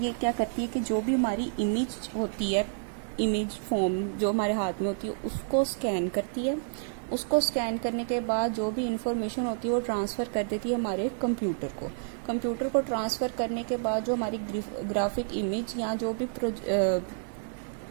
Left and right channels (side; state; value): left; silent; digital silence